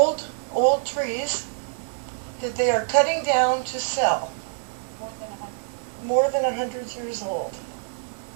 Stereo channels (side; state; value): left; silent; 57 dB below the other